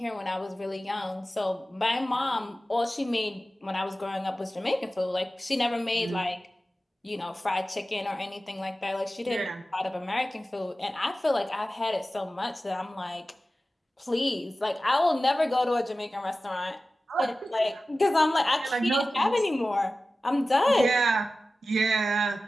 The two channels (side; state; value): both; normal; correlation 0.95